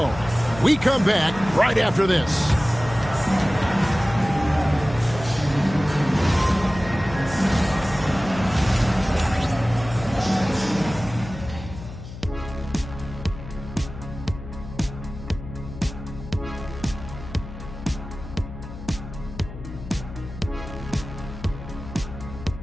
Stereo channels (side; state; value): left; noise; hum, 12 dB below the sound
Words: We come back right after this.